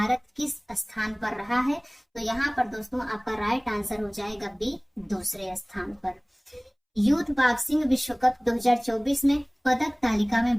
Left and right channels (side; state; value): both; identical; correlation 1.00